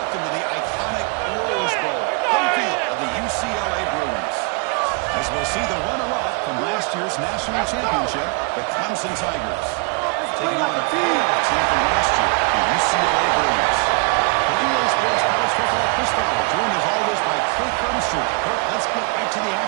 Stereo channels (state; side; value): quieter; left; 32.4 dB